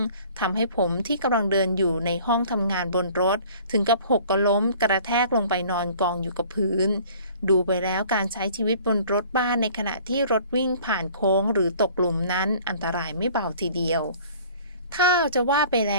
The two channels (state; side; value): inverted; both; correlation -0.50